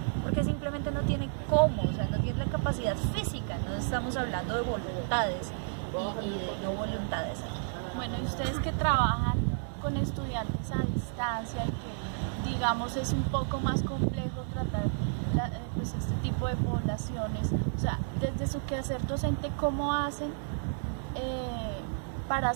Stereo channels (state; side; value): silent; left; 57 dB below the other